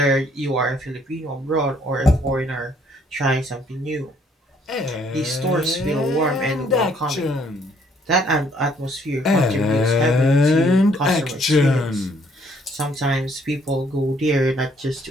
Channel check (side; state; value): both; normal; correlation 0.65